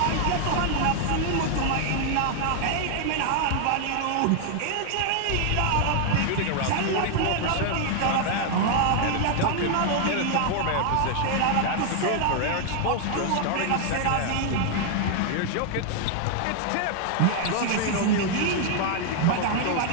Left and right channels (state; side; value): different; both; correlation 0.00